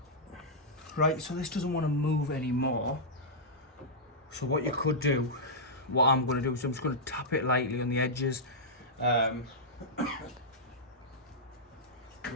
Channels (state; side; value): normal; both; correlation -0.11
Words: Right, so this doesn't want to move anymore. So what you could do, what I'm going to do is I'm just going to tap it lightly on the edges with a